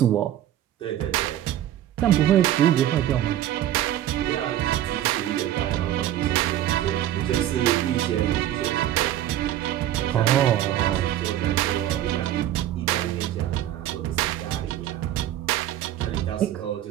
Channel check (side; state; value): left; quieter; 12.2 dB